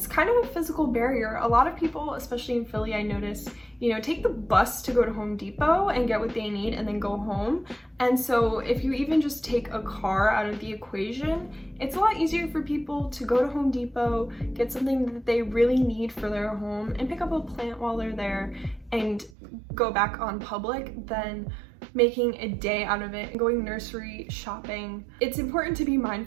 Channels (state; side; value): drops out; left; at 19.3 s